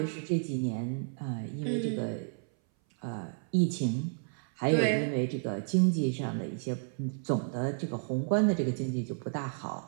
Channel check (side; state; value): left; silent; 57 dB below the other